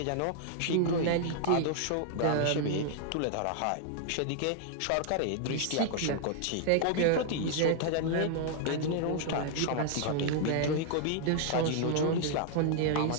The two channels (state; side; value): different; both; correlation 0.00